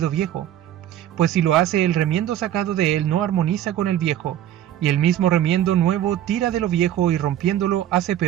viejo, pues si lo hace, el remiendo sacado de él no armoniza con el viejo, y el mismo remiendo nuevo tira de lo viejo y rompiéndolo hace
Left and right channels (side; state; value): left; quieter; 11.6 dB